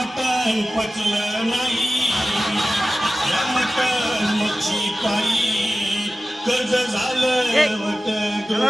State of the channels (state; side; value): normal; both; correlation 0.95